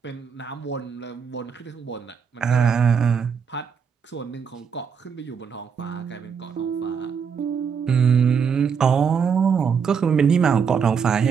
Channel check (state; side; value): quieter; left; 6.5 dB